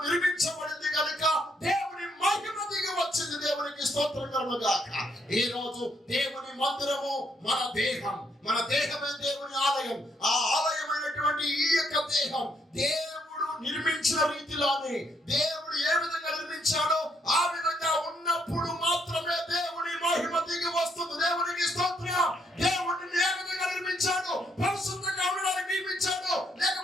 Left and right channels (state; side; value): normal; both; correlation 0.73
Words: నిర్మించబడింది కనుక దేవుని మహిమ దిగి వచ్చింది. దేవునికి స్తోత్రం కలుగును గాక. ఈ రోజు దేవుని మందిరము మన దేహం, మన దేహమే దేవుని ఆలయం. ఆ ఆలయమైనటువంటి ఈ యొక్క దేహం దేవుడు నిర్మించిన రీతిలోనే దేవుడు ఏ విధంగా నిర్మించాడో ఆ విధంగా ఉన్నప్పుడు మాత్రమే దేవుని మహిమ దిగి వస్తుంది. దేవునికి స్తోత్రం. దేవుడిని ఏ విధంగా నిర్మించాడో, పరిశుద్ధంగా ఉండడానికి నిర్మించాడో,